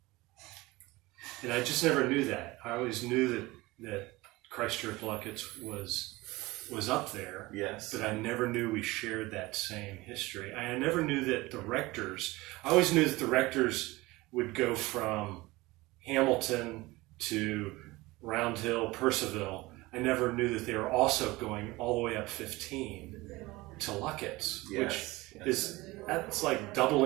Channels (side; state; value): left; quieter; 20.8 dB